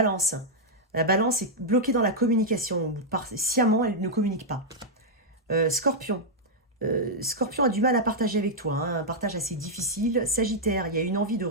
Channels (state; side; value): normal; both; correlation -0.05